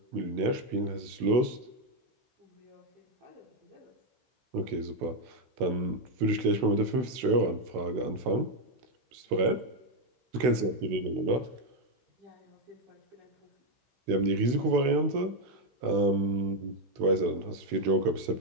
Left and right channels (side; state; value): left; late; 16 ms